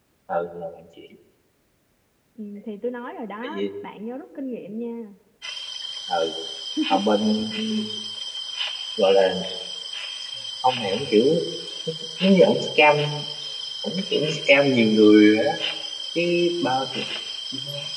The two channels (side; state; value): both; identical; correlation 1.00